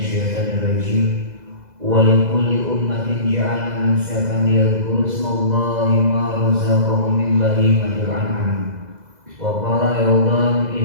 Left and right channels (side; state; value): left; late; 2.0 ms